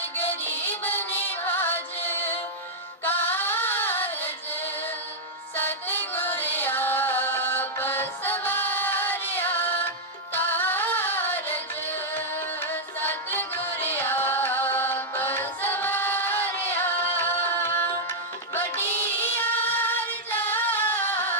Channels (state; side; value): normal; both; correlation -0.05